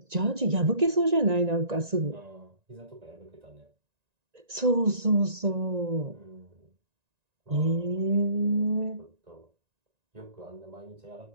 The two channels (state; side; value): late; left; 1.9 ms